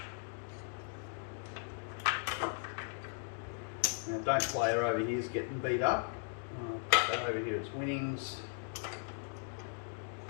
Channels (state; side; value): silent; right; 53 dB below the other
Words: Now don't player over here is getting beat up. But over here it's winnings.